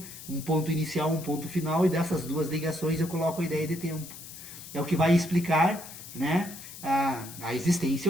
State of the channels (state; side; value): noise; left; hiss, 14 dB below the sound